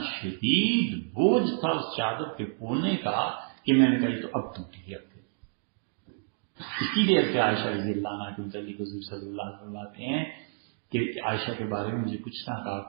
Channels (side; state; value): left; silent; digital silence